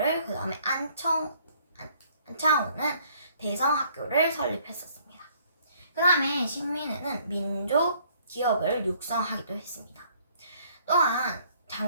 그 다음에 안창호는 대성학교를 설립했었습니다. 그 다음에 신민회는 민족 기업을 육성하기도 했습니다. 또한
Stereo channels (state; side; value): inverted; both; correlation -0.62